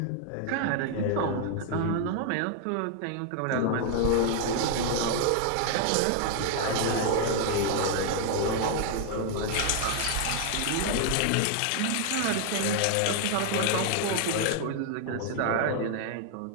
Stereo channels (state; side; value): different; both; correlation 0.00